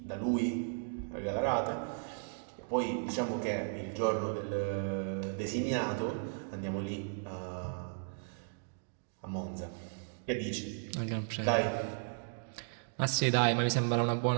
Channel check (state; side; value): silent; left; digital silence